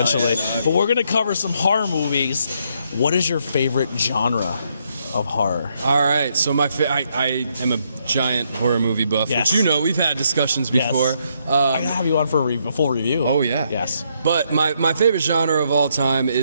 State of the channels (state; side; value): inverted; both; correlation -0.74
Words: But we're going to cover some horror movies. What is your favorite genre of horror? All right, so I am a giant horror movie buff, which you know we've had discussions before. Yes. I gotta have you on for a full review. Oh yeah. Yes. But my favorite genre of all time